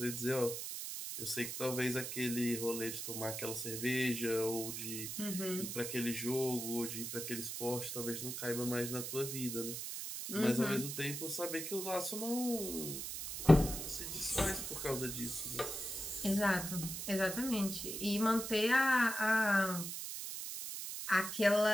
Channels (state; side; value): noise; right; hiss, 5 dB below the sound